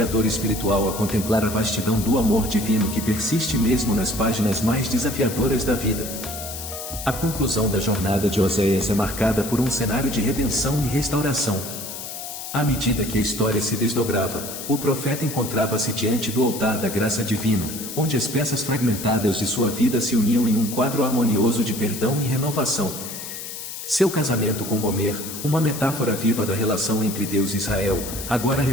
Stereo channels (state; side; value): noise; left; hiss, 9 dB below the sound